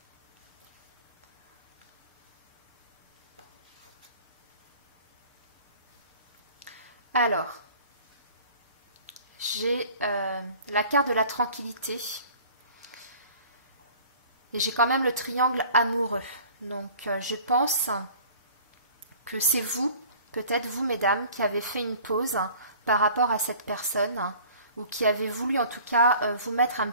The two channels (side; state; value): both; inverted; correlation -0.48